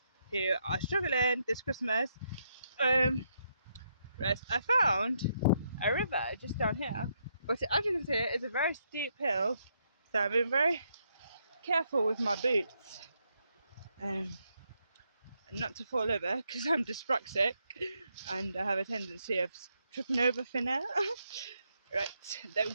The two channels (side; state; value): both; inverted; correlation -0.78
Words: who are struggling this Christmas. Right, I found a river just down here, but as you can see, it's a very steep hill, so I've been very careful with my boots, not to fall over because I'm dyspraxic and I have a tendency of tripping over thin air. Right, there we